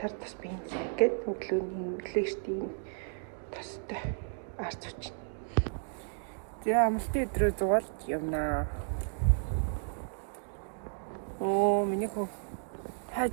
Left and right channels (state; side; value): silent; left; digital silence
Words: тус бензин гээд өглөөний өглөөштэй тустай арц учраас. Тэгээ амралтын өдрөө зугаалж явнаа. Миний хөө